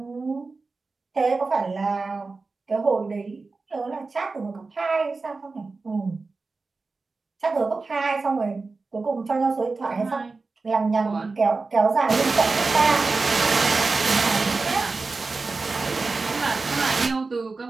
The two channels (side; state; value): left; quieter; 3.9 dB